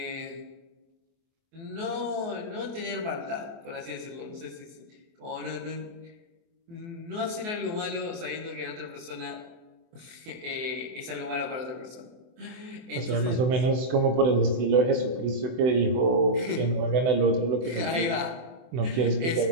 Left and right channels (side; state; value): left; late; 24 ms